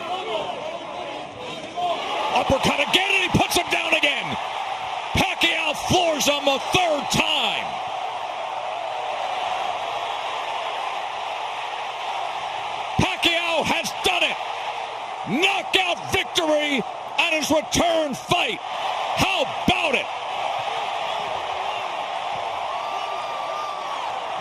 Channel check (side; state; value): both; identical; correlation 1.00